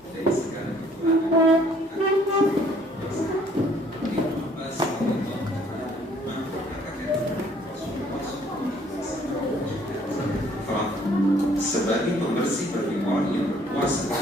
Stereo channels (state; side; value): normal; both; correlation 0.60